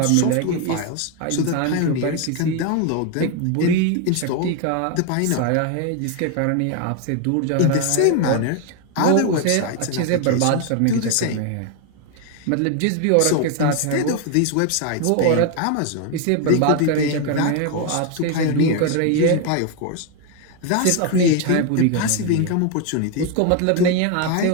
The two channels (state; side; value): different; both; correlation 0.01